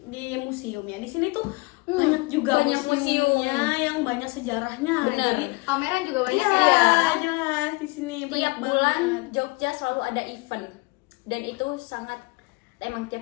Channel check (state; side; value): quieter; right; 25.8 dB